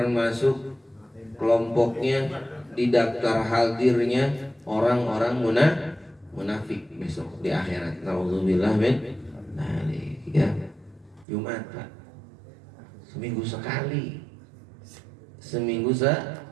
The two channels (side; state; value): left; drops out; at 11.2 s